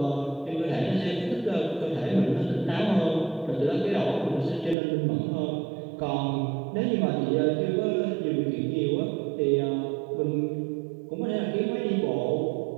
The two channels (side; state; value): left; drops out; at 4.8 s